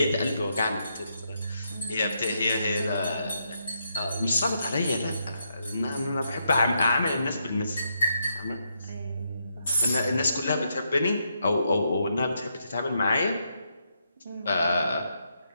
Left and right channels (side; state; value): both; inverted; correlation -0.80